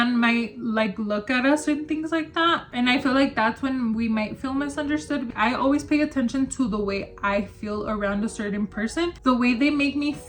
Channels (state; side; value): identical; both; correlation 1.00